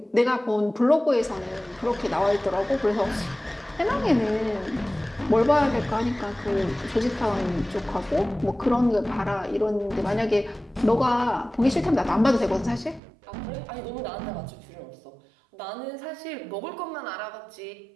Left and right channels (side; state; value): left; drops out; at 13.0 s